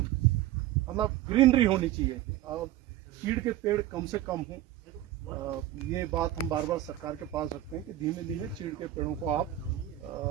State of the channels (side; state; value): left; quieter; 13.5 dB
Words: मतलब ग्रीनरी होनी चाहिए, और चीड़ के पेड़ कम से कम हों। ये बात हम बार बार सरकार के पास रखते हैं कि धीमे धीमे चीड़ के पेड़ों को आप